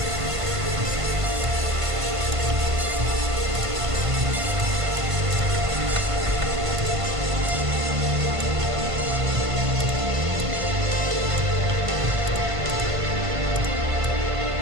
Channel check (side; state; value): left; late; 1.5 ms